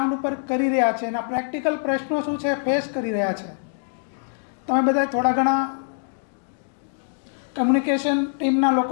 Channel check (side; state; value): right; silent; digital silence